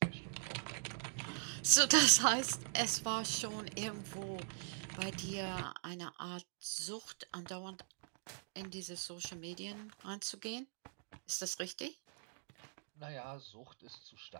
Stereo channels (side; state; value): left; silent; digital silence